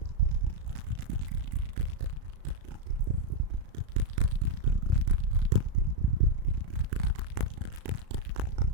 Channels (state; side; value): late; left; 35 ms